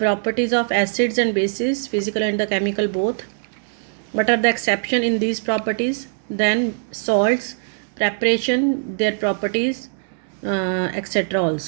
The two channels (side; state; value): left; silent; digital silence